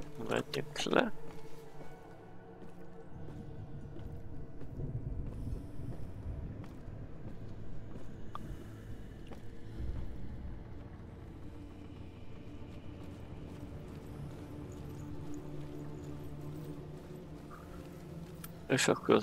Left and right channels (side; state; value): both; identical; correlation 1.00